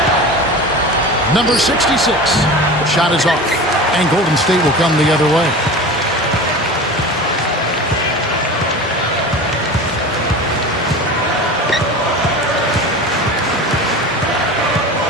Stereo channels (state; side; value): normal; both; correlation 0.33